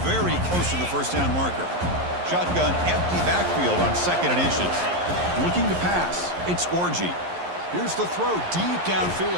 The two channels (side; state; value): left; late; 11 ms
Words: very close to the first down marker. Shotgun empty backfield on second and inches. Looking to pass. It's Orji. Here's the throw deep